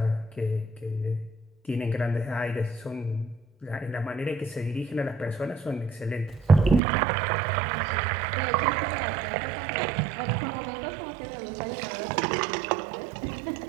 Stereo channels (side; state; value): left; drops out; at 6.8 s